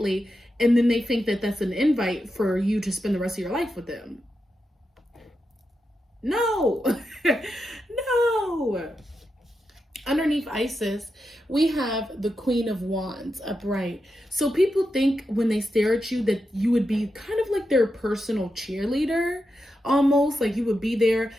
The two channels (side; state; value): both; normal; correlation 0.87